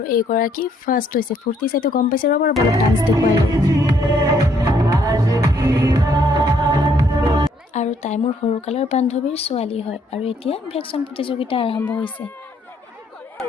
এইগৰাকী ফাৰ্ষ্ট হৈছে। ফূৰ্তি চাইতো গম পাইছে, ৰ'ব অলপ ডান্স দেখুৱাই লওঁ। আৰু তাই মোৰ সৰুকালৰ বান্ধৱীৰ ছোৱালী হয় আৰু এতিয়া ভেকচন প্ৰতিযোগিতা আৰম্ভ হৈছে।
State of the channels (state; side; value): normal; both; correlation 0.68